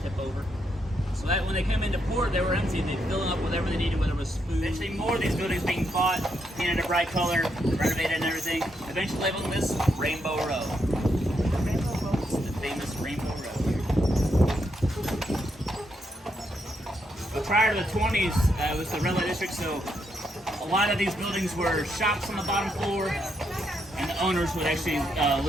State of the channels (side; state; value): both; normal; correlation 0.79